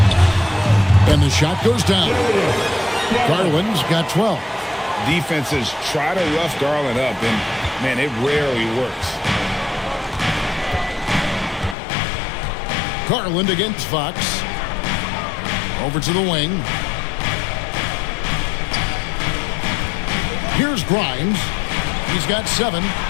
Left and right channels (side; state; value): right; drops out; at 11.8 s